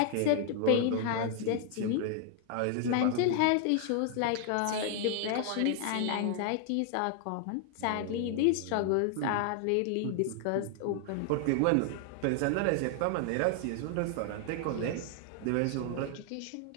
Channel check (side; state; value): both; different; correlation 0.00